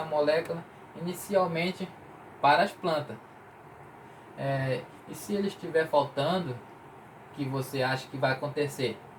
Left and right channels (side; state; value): both; identical; correlation 1.00